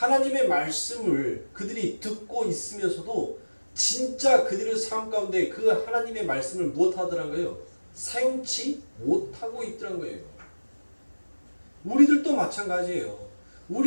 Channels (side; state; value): both; inverted; correlation -1.00